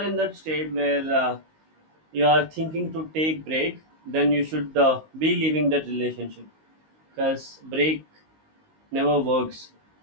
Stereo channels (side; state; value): left; late; 19 ms